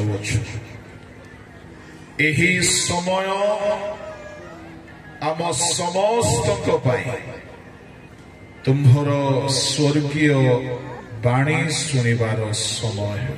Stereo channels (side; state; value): both; identical; correlation 1.00